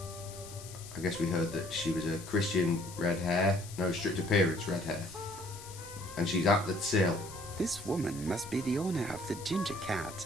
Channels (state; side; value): noise; left; hiss, 15 dB below the sound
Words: I guess we heard that she was a Christian red hair. No, strict appearance red hair. And she's at the till. This woman must be the owner of the ginger cat.